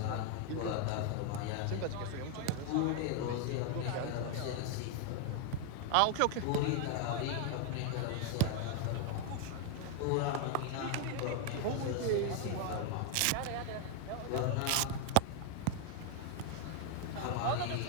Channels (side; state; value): both; different; correlation 0.00